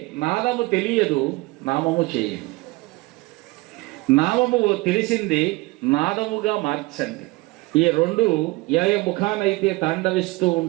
నాదము తెలియదు, నామము చేయదు. నామము తెలిసింది, నాదముగా మార్చండి. ఈ రెండు ఏ ముఖానైతే తాండవిస్తూ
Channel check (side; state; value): left; quieter; 22.5 dB